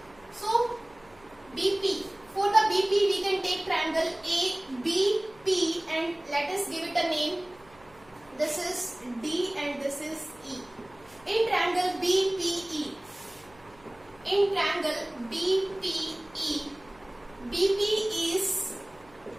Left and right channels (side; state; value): right; noise; hum, 27 dB below the sound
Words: So BP, for the BP we can take triangle ABP and let us give it a name. This is D and this is E. In triangle BPE, BP